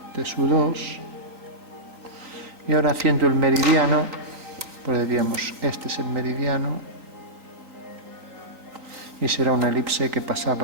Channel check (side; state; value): left; late; 3.9 ms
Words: T2. Y ahora haciendo el meridiano, pues diríamos, este es el meridiano y será una elipse que